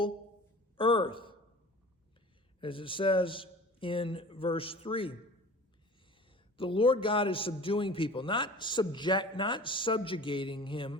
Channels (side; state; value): both; normal; correlation 0.41